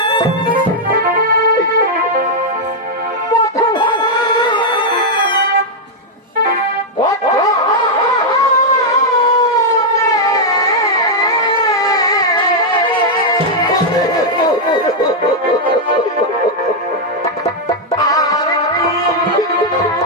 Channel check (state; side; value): normal; both; correlation -0.02